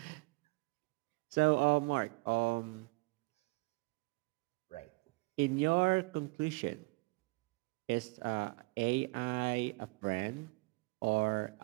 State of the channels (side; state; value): left; quieter; 26.7 dB